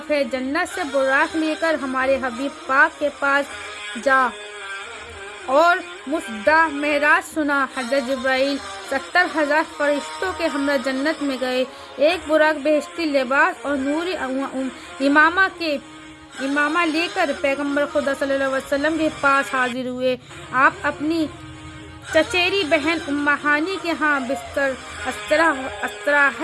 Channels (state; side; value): identical; both; correlation 1.00